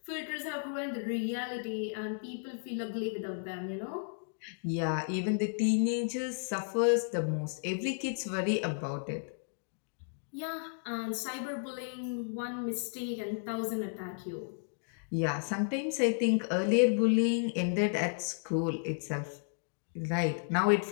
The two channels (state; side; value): silent; right; digital silence